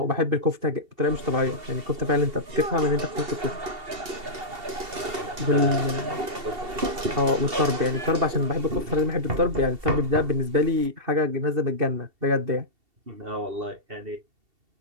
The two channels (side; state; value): left; late; 2.7 ms